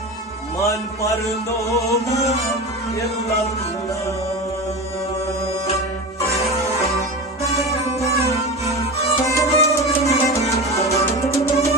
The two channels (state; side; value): normal; both; correlation 0.26